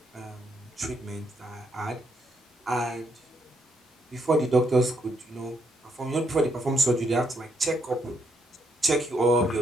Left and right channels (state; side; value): normal; both; correlation 0.75